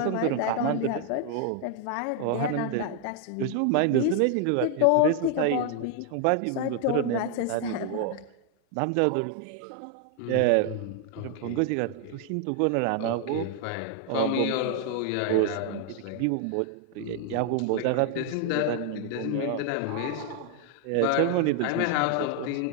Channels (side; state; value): both; different; correlation 0.00